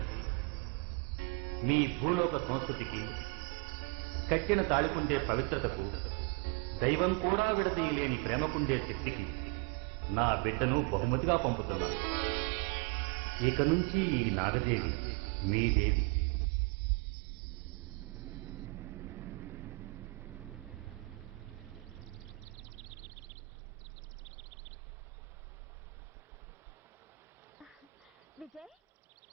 మీ భూలోక సంస్కృతికి కట్టిన తాళికుండే పవిత్రతకు, దైవం కూడా విడదీయలేని ప్రేమకుండే శక్తికి నా బిడ్డను బహుమతిగా పంపుతున్నాను. ఇక నుంచి ఈ నాగదేవి మీదేవి. విజయ్,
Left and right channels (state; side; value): quieter; left; 27.5 dB